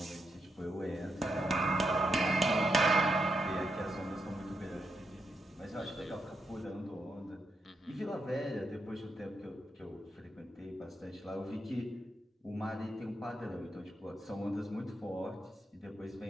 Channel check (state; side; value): normal; both; correlation 0.82